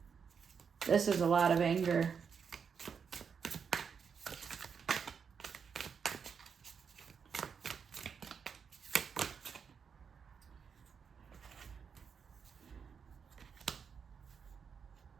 This is a lot of anger.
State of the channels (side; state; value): left; quieter; 6.4 dB